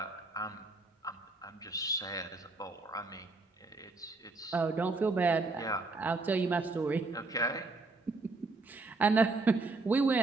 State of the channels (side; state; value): left; quieter; 3.4 dB